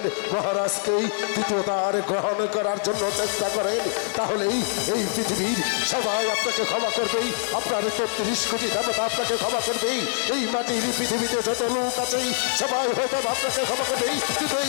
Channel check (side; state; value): right; silent; 59 dB below the other